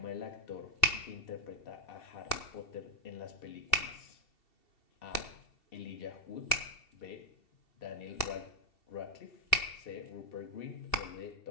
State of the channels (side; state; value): right; late; 2.7 ms